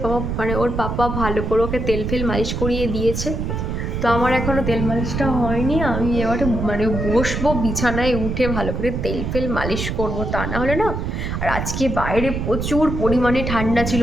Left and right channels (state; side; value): noise; right; rumble, 3 dB below the sound